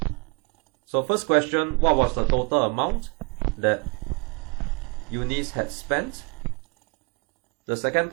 So first question, what was the total amount that Eunice had spent? The second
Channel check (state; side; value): quieter; left; 29.1 dB